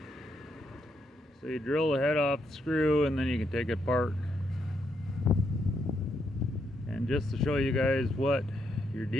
So you drill the head off the screw and then you can take it apart. And just to show you guys what you're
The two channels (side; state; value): both; normal; correlation 0.78